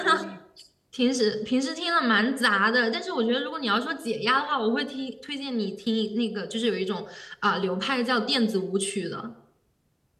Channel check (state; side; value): identical; both; correlation 1.00